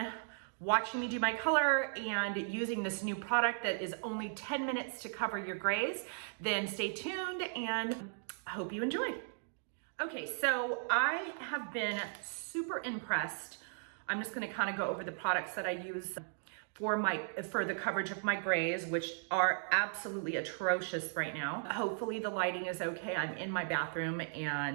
watching me do my color and using this new product that is only 10 minutes to cover your grays, then stay tuned and I hope you enjoy. Okay, so I have been super impressed. I'm just gonna kind of go over the products that I use for the coverage of my grays, which are absolutely atrocious right now. Hopefully the lighting is okay. I'm in my bathroom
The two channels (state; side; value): silent; left; digital silence